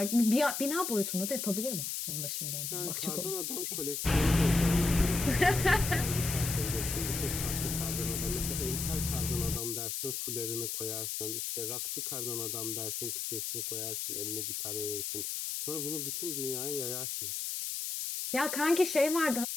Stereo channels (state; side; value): noise; left; hiss, 3 dB below the sound